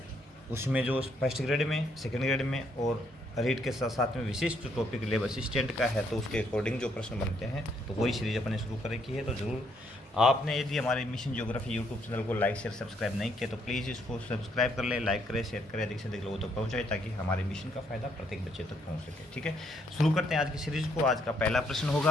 उसमें जो फर्स्ट ग्रेड में, सेकेंड ग्रेड में और रीड के साथ साथ में विशिष्ट टॉपिक लेब असिस्टेंट का है, तो उसके अकॉर्डिंग जो प्रश्न बनते हैं तो वही सीरीज अपने शुरू कर रखी है। तो ज़रूर आपने यदि हमारे मिशन ज्योग्राफी यूट्यूब चैनल को लाइक शेयर सब्सक्राइब नहीं किया तो प्लीज़ इसको सब्सक्राइब कर ले, लाइक करें, शेयर करें, अधिक से अधिक लोगों तक पहुँचाए ताकि हमारे मिशन का फायदा प्रत्येक बच्चे तक पहुँच सके। ठीक है, शुरू करते हैं आज की सीरीज को। आज का पहला प्रश्न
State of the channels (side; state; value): both; normal; correlation 0.71